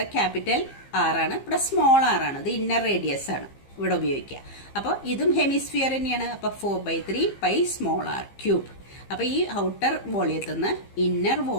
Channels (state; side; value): late; right; 15 ms